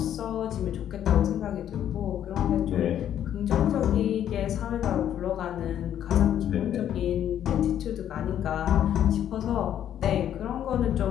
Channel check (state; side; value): quieter; right; 10.4 dB